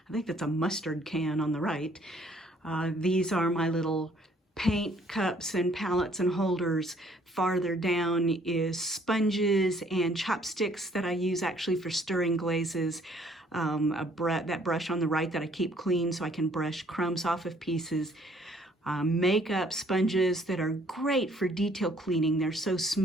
I think that's a mustard can on the right. These are my little paint cups and palettes and holders. Farther down is sponges and chopsticks that I use actually for stirring glazes. That brush on the right that I keep clean so I can brush crumbs off of pieces. Makeup sponges that are great for detail cleaning. They're so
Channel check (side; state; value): both; normal; correlation 0.61